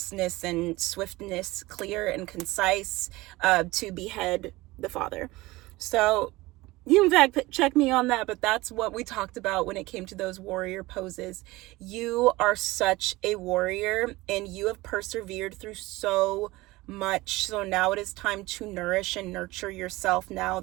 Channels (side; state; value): left; quieter; 20.2 dB